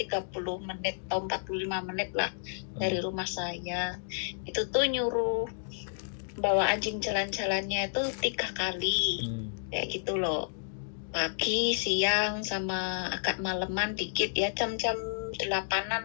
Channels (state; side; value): silent; right; digital silence